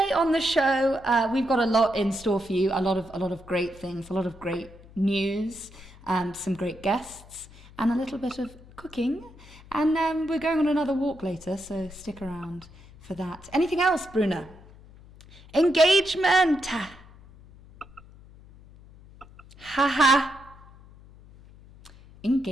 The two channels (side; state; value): left; noise; hum, 22 dB below the sound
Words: on the show, we've got a lot in store for you, a lot of great things, a lot of great news, some great guests, and a little bit of cooking. And we're going on another walk later, so stick around for that. Anything else, Bruna? Engagement! Haha.